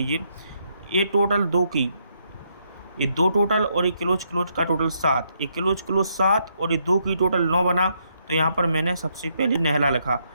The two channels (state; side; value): inverted; both; correlation -0.76